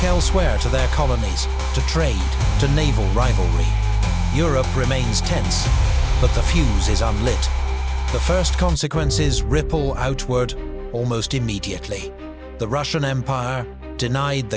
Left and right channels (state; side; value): identical; both; correlation 1.00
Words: elsewhere to their colonies, to trade, to naval rivalry. Europe remains tense, but the fuse is unlit. The first consequences ripple outward almost immediately. The Russian Empire, denied